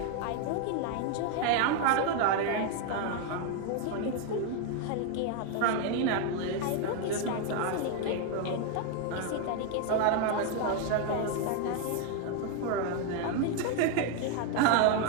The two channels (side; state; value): both; different; correlation 0.01